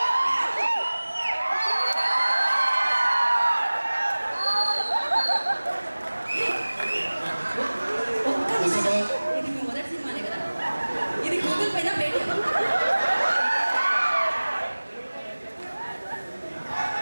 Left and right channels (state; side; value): inverted; both; correlation -1.00